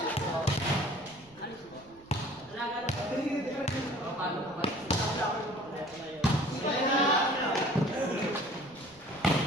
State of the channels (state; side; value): noise; right; rumble, 27 dB below the sound